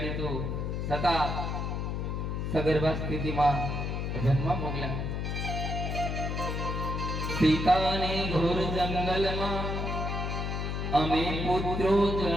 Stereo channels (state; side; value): noise; left; hum, 2 dB below the sound